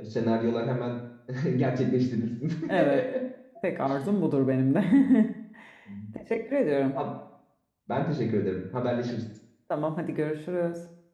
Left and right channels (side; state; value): both; identical; correlation 1.00